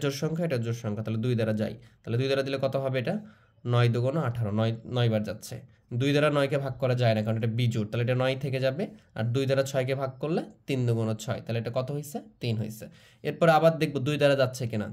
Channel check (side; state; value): both; identical; correlation 1.00